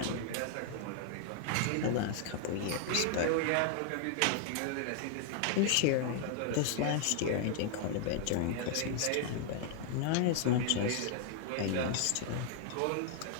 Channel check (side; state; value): both; different; correlation 0.00